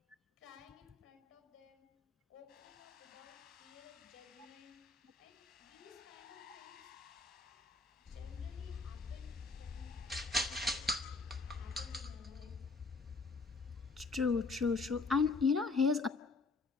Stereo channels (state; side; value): quieter; right; 4.0 dB